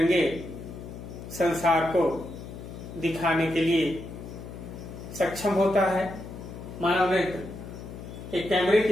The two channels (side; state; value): left; noise; hum, 12 dB below the sound